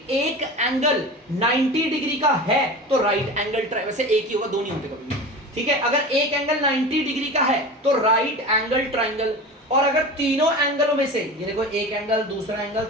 एक एंगल 90 डिग्री का है तो राइट एंगल वैसे एक ही होगा, दो नहीं होते कभी भी, ठीक है। अगर एक एंगल 90 डिग्री का है तो राइट एंगल ट्राइंगल। और अगर तीनों एंगलों में से, ये देखो एक एंगल, दूसरा एंगल,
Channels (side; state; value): both; normal; correlation 0.32